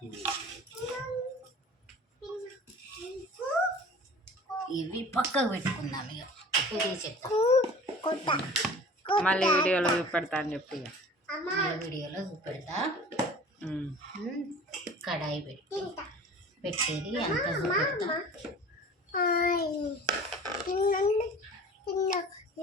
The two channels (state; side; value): normal; both; correlation 0.42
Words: ఇవి పక్కకు పెట్టుకుందాం. ఇక ఇది చెప్తా, మళ్ళీ వీడియోలో చూపెడతా అని చెప్పి వీడియోలో చూపెడతా. కడాయి పెట్టేది అంత చూపెడతా.